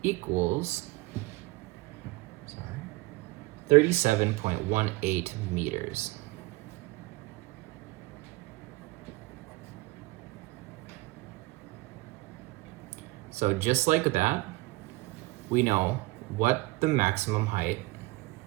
equals 37.18 meters. So just like that, we know what the maximum height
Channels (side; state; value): left; quieter; 22.2 dB